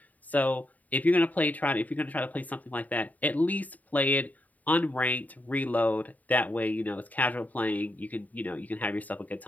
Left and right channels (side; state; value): right; late; 0.075 ms